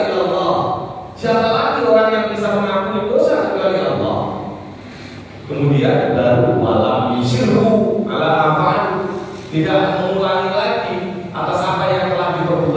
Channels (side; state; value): both; identical; correlation 1.00